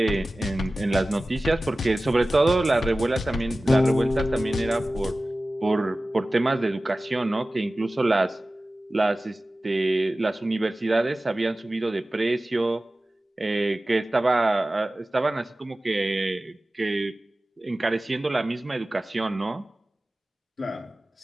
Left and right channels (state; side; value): normal; both; correlation 0.96